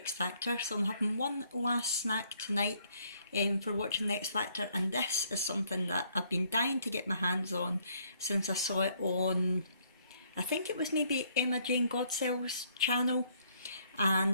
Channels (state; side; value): inverted; both; correlation -0.67